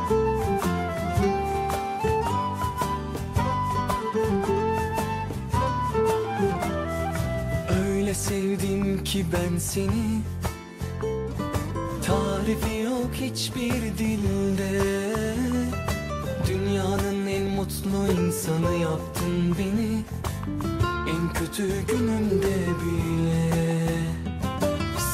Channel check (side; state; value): both; identical; correlation 1.00